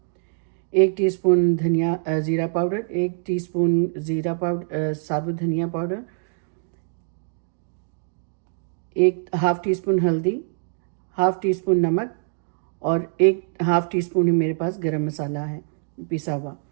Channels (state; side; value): silent; left; digital silence